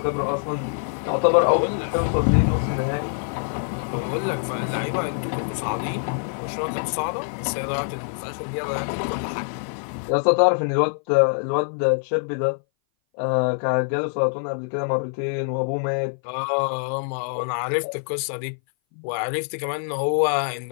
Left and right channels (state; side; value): silent; right; 59 dB below the other